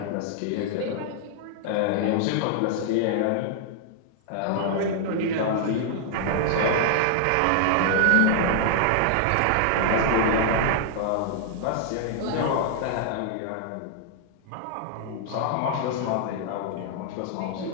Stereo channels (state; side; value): different; both; correlation -0.01